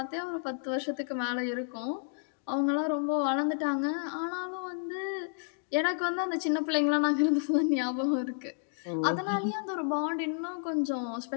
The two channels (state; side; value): silent; right; digital silence